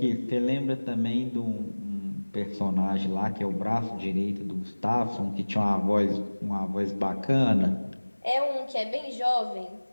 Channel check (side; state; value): both; inverted; correlation -1.00